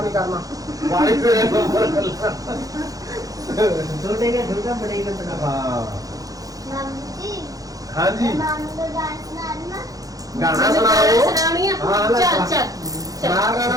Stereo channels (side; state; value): left; late; 0.17 ms